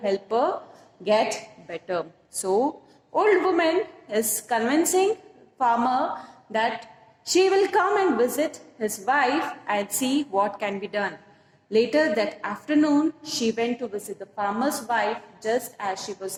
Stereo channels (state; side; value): identical; both; correlation 1.00